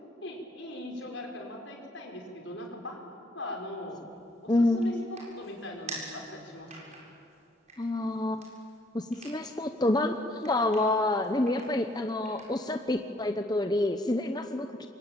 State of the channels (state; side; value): normal; both; correlation 0.65